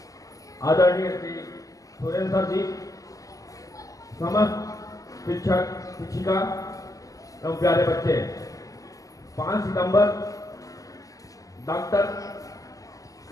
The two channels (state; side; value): late; right; 0.17 ms